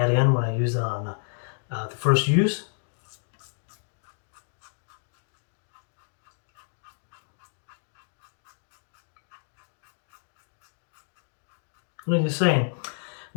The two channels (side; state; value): right; silent; digital silence